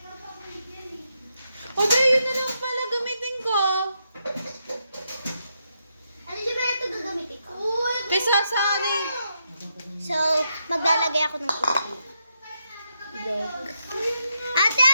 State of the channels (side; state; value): both; inverted; correlation -0.81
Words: O, di, yun na lang pala gamitin ko. Ano siya ba ito gagamitin ko? Kay Sasari. So, maglalagay ako ng itlog. Ate,